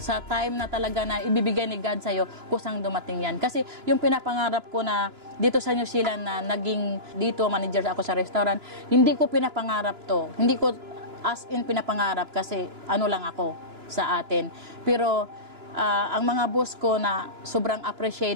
time na talaga na ibibigay ni God sa'yo, kusang dumating yan. Kasi yung pinapangarap ko na dito sa New Zealand na naging dito manager ako sa restaurant, hindi ko pinapangarap to. Hindi ko as in pinapangarap kasi lang ako sa atin. Pero ang mga boss ko na sobrang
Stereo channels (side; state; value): left; late; 2.9 ms